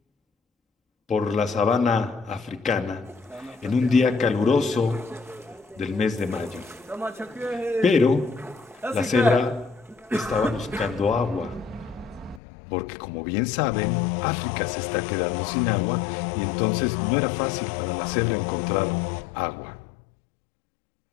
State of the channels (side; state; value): right; drops out; at 12.4 s